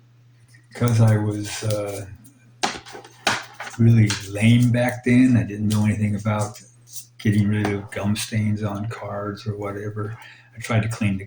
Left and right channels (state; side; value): identical; both; correlation 1.00